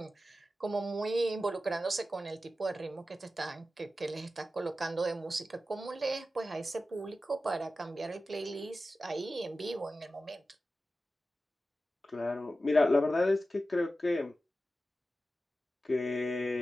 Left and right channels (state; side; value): normal; both; correlation 0.93